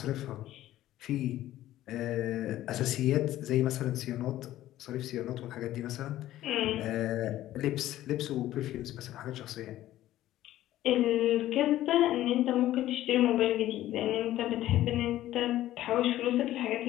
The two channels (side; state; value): right; quieter; 14.1 dB